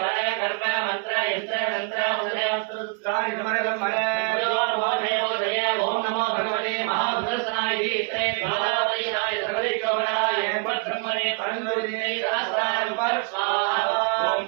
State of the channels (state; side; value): quieter; left; 33.3 dB